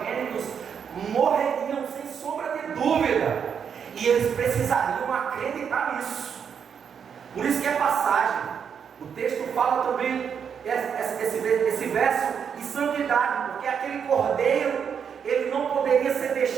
morreriam sem sombra de dúvida, e eles precisariam acreditar nisso. Por isso que é passagem. O texto fala também esse verso de santidade, porque aquele cordeiro, ele não poderia ser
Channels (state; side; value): quieter; left; 7.3 dB